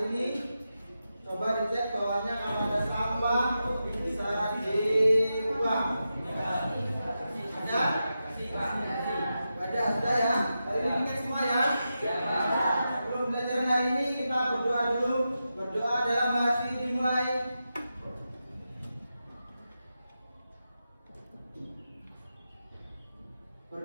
ini. Coba dicek bawahnya kalau ada sampah bisa dibuang. Ada? Ada, sudah ya. Hari ini kita semua ya. Sebelum belajar hari ini kita berdoa dulu. Berdoa dalam hati dimulai.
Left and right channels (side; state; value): both; inverted; correlation -0.89